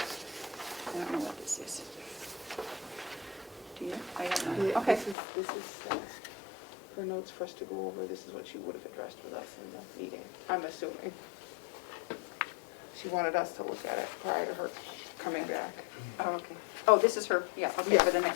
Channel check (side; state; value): right; drops out; at 5.2 s